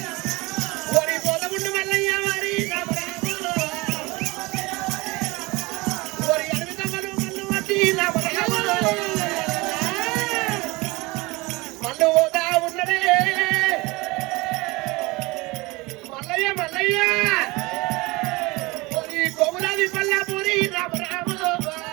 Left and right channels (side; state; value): left; quieter; 23.2 dB